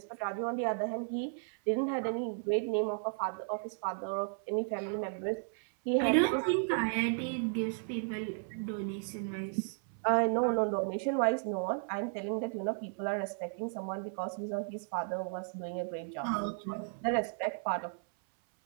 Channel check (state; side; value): silent; left; 55 dB below the other